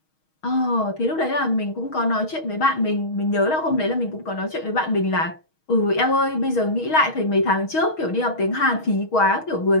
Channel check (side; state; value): right; late; 6.3 ms